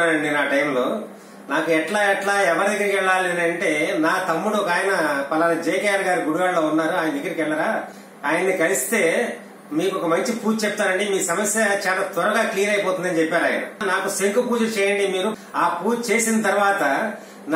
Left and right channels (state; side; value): identical; both; correlation 1.00